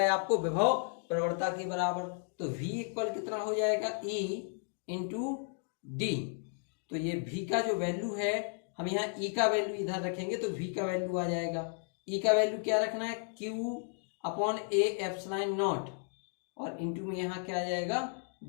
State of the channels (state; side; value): silent; right; 55 dB below the other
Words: आपको विभव प्रवणता के बराबर। तो V इक्वल कितना हो जाएगा, E इंटू डी। तो ये V का जो वैल्यू है, हम यहाँ E का वैल्यू इधर रखेंगे तो V का वैल्यू आ जाएगा। E का वैल्यू क्या रखना है, Q upon A epsilon not और इंटू में यहाँ क्या आ जाएगा